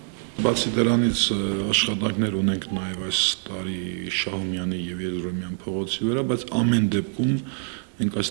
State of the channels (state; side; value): silent; left; 56 dB below the other